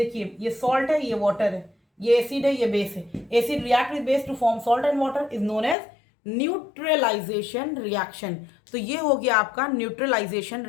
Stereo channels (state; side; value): drops out; right; at 5.8 s